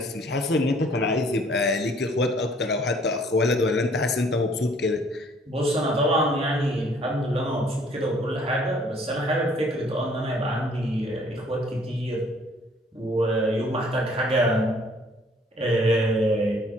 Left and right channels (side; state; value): both; normal; correlation 0.59